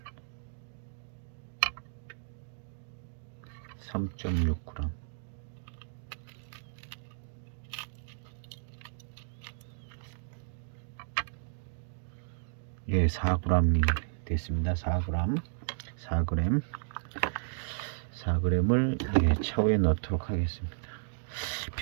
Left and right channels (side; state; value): left; silent; digital silence